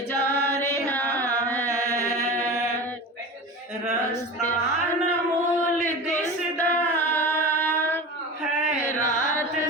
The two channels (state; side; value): normal; both; correlation 0.31